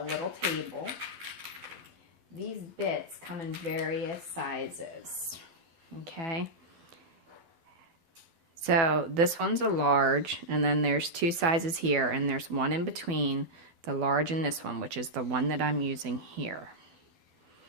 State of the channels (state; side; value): late; left; 12 ms